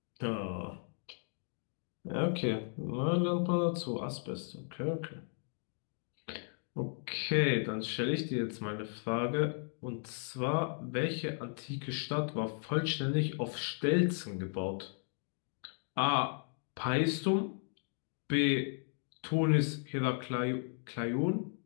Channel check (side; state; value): right; silent; 54 dB below the other